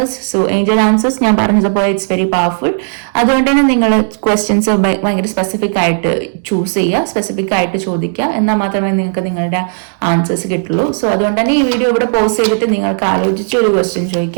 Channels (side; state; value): left; silent; digital silence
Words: So Angel answers ഞാൻ പറഞ്ഞതുപോലെ ഇറ്റ്സ് വെരി പവർഫുൾ. അതുകൊണ്ട് തന്നെ നിങ്ങൾ ക്വസ്റ്റ്യൻസ് ഭയങ്കര സ്പെസിഫിക് ആയിട്ട് ചൂസ് ചെയ്യുക, സ്പെസിഫിക് ആയിട്ട് ചോദിക്കുക, എന്നാൽ മാത്രമേ നിങ്ങൾക്ക് നിങ്ങളുടെ ആൻസേഴ്സ് കിട്ടുള്ളൂ. സോ അതുകൊണ്ട് തന്നെ ഈ വീഡിയോ ഇവിടെ പോസ്റ്റ് ചെയ്തിട്ട് നിങ്ങൾക്ക് ആലോചിച്ച് ഒരു ക്വസ്റ്റ്യൻ